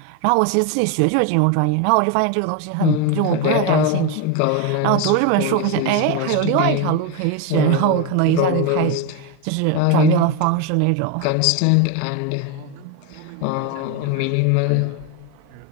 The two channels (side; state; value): both; different; correlation 0.02